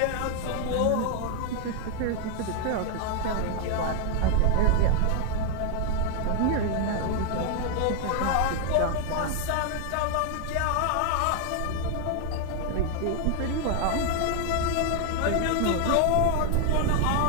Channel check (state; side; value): different; both; correlation 0.00